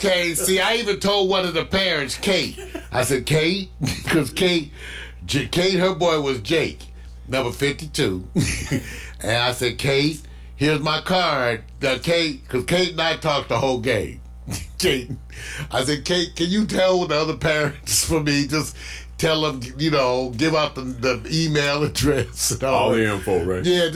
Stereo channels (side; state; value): both; identical; correlation 1.00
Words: see, I even told one of the parents, Kate. I said, Kate, because Kate, her boy was Jake, number 52. And I said, Kate, here's my card. Kate, because Kate and I talked the whole game. Kate, I said, Kate, can you tell the other parents for me? Just tell them, give out the email address and all the info, right? Yeah,